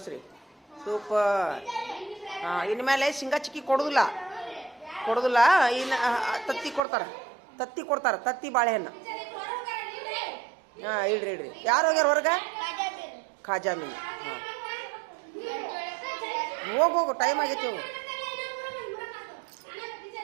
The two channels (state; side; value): drops out; left; at 6.8 s